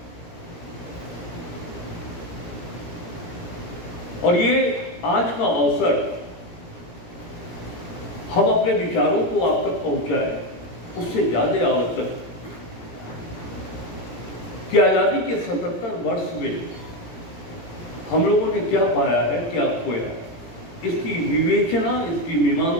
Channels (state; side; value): late; right; 17 ms